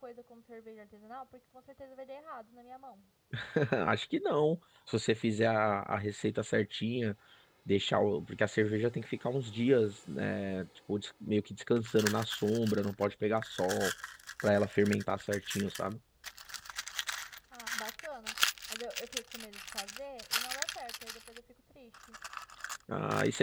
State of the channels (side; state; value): both; identical; correlation 1.00